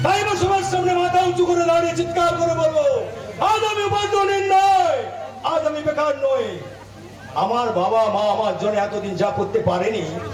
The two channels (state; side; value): identical; both; correlation 1.00